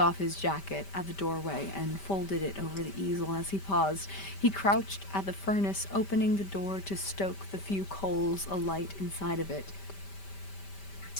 his jacket at the doorway and folded it over the easel as he paused. He crouched at the furnace, opening the door to stoke the few coals alight inside it.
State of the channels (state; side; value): late; right; 5.1 ms